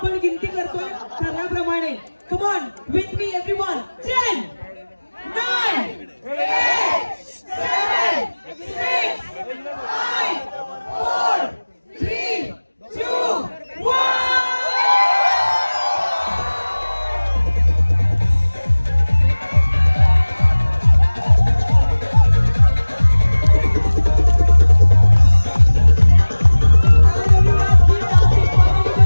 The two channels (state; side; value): inverted; both; correlation -1.00